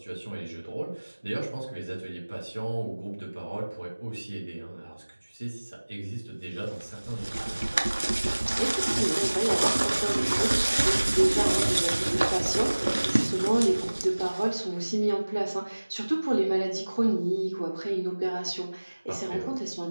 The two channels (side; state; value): both; inverted; correlation -1.00